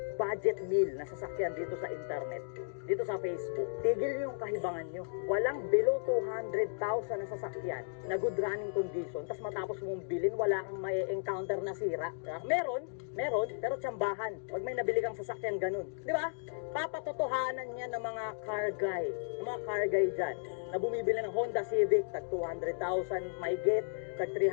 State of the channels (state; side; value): silent; right; digital silence